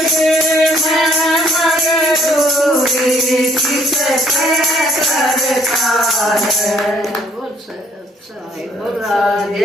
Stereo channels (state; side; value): normal; both; correlation 0.64